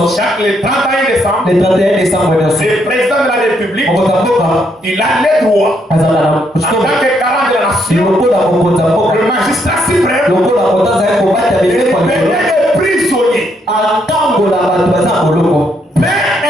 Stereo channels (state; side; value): normal; both; correlation 0.74